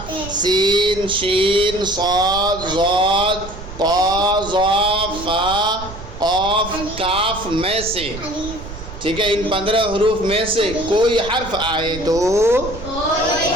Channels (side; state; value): right; noise; rumble, 12 dB below the sound